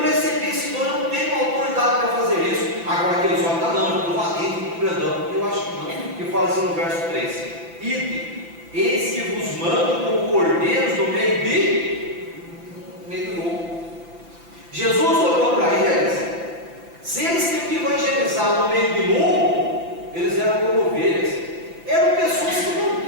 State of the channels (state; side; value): late; left; 5.9 ms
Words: recebi, Senhor, eu não tenho autoridade para fazer isso. Agora aqueles homens estão não, eu estou valente, estou grandão. Eu acho que não. Que fala assim no verso 3: Ide, eis que vos mando como cordeiros no meio do lobo. Jesus olhou para eles. Se eles tinham que evangelizar no meio do lobo, eles eram como ovelhas. Eram pessoas que